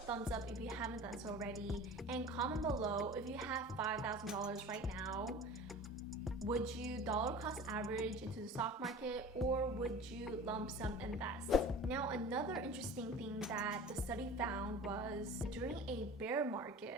up if you haven't done so already, and comment below if you have $5,000 right now. Would you dollar cost average into the stock market, or would you lump sum invest? Now, another interesting thing that the study found was during a bear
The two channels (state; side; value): normal; both; correlation 0.38